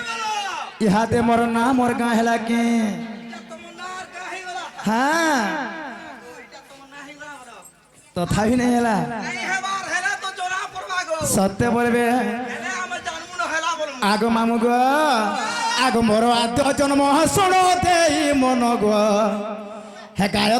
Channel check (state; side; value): identical; both; correlation 1.00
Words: ইহাতে মোর না মোর গাঁ হেলা কি তোমার কাহি বলা হ্যাঁ এটা তোমার নাহি বলা বলো তথাপি নেই হেলা এই হেবার হেলা তো জোড়া পড়বা গো সত্য বলবে হেলে আমি জানবো না হেলা বলবো আগ মামু গো আগ মোর আদ্য জন্ম শোণ দেই মন গো হে